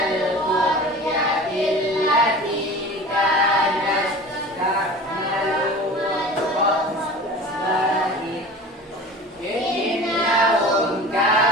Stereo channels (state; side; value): normal; both; correlation 0.38